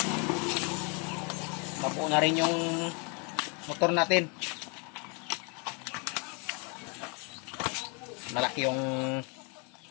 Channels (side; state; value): right; quieter; 34.5 dB